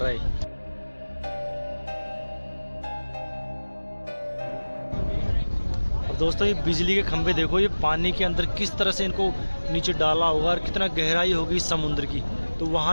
है। अब दोस्तों ये बिजली के खंभे देखो, ये पानी के अंदर किस तरह से इनको नीचे डाला होगा और कितना गहराई होगी समुद्र की, तो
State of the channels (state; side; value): inverted; both; correlation -1.00